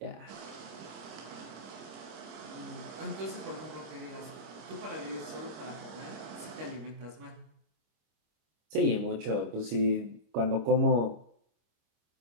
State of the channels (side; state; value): left; late; 25 ms